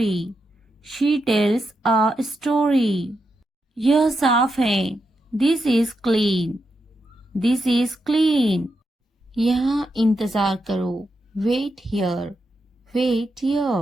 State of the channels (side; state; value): both; normal; correlation 0.85